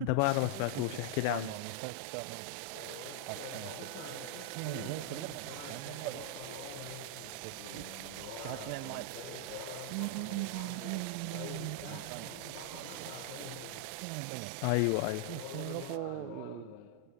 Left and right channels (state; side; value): different; both; correlation 0.00